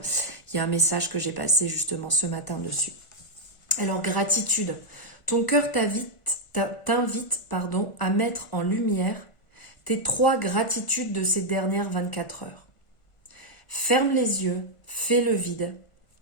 Il y a un message que j'ai passé justement ce matin dessus. Alors, gratitude. Ton cœur t'invite à mettre en lumière tes 3 gratitudes de ces dernières 24 heures. Ferme les yeux, fais le vide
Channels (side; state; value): right; late; 1.5 ms